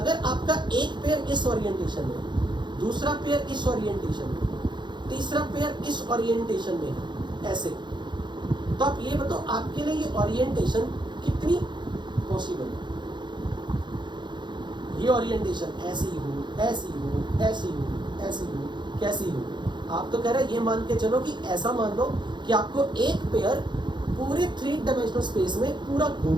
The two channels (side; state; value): left; late; 0.22 ms